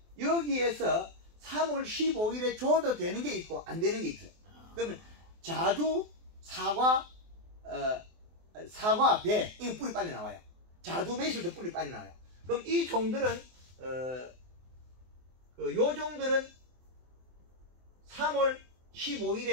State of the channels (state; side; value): late; left; 24 ms